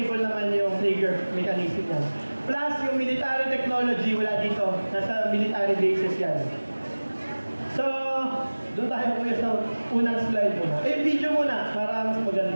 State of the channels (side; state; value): both; inverted; correlation -1.00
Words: naman yung trigger mechanism yan. Plus, yung military technology, wala dito. Nasa military bases yan. So, doon tayo kuya sa unang slide muna. Video muna, para mas